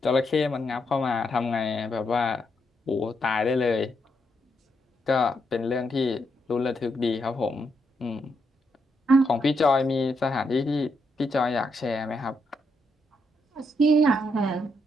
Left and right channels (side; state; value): both; normal; correlation 0.79